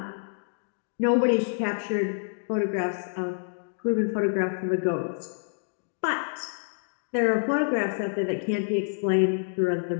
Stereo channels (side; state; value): right; silent; digital silence